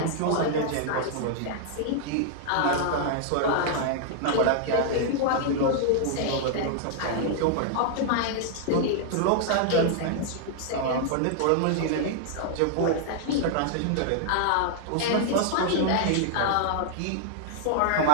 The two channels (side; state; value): both; different; correlation -0.01